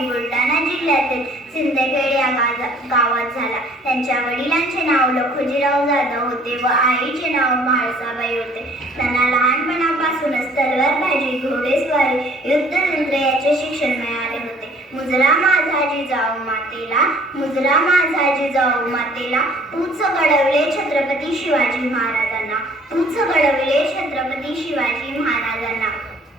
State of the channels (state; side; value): normal; both; correlation 0.56